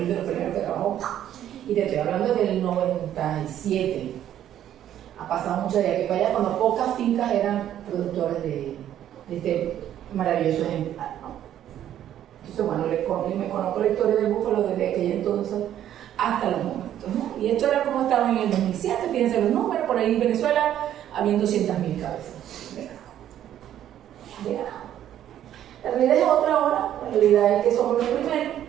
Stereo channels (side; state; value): left; quieter; 11.2 dB